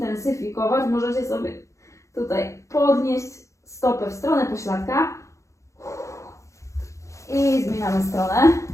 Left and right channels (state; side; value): late; right; 0.15 ms